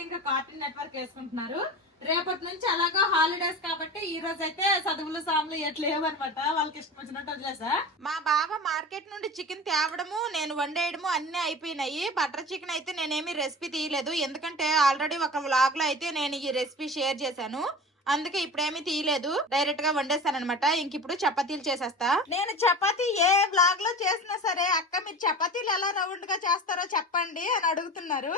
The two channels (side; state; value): both; normal; correlation 0.33